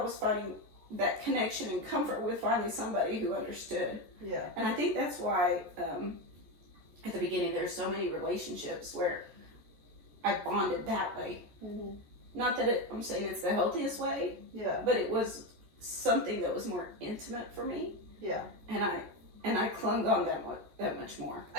was finding that connection and comfort with finally somebody who understood. Yeah. And I think that's why, at the beginning, there's so many relationships where I bonded that way. Mm-hmm. Not that I'm saying it's the healthiest way, Yeah. but it was something that was more intimate for me. Yeah. And I clung on that much more.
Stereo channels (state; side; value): late; left; 14 ms